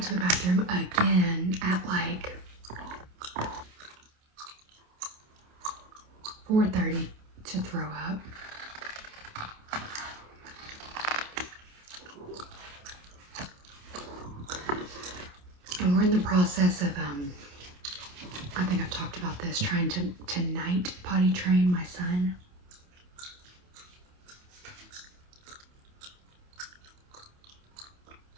to the bathroom again at like 4:30 to throw up. And we're in the process of, I think I've talked about this, trying to night potty train my son.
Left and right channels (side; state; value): left; late; 28 ms